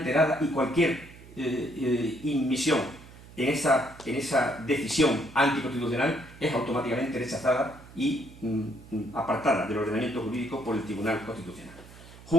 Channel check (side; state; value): right; noise; hum, 19 dB below the sound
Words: y cualquier inmisión en esa decisión anticonstitucional es automáticamente rechazada y apartada del ordenamiento jurídico por el Tribunal Constitucional.